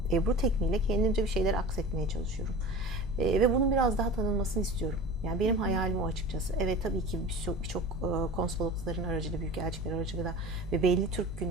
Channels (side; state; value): both; normal; correlation 0.36